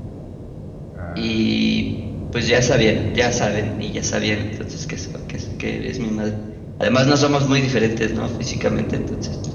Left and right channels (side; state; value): both; identical; correlation 1.00